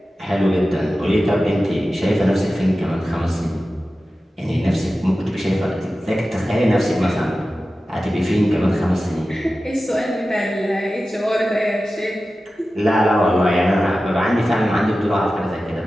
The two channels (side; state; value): both; normal; correlation 0.94